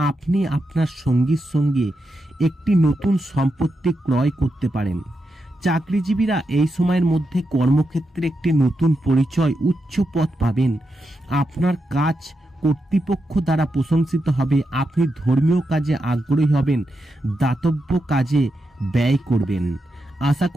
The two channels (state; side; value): normal; both; correlation 0.86